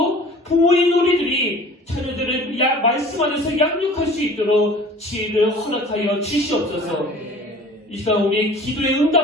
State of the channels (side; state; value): both; normal; correlation 0.46